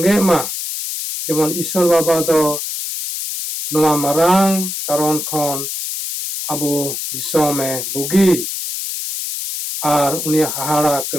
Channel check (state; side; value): noise; left; hiss, 5 dB below the sound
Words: ma jemon Isor baba do noa marang karon khon abu disome bugi ar unia hahara